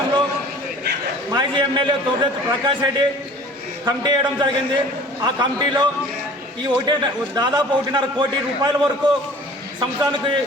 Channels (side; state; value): both; normal; correlation 0.46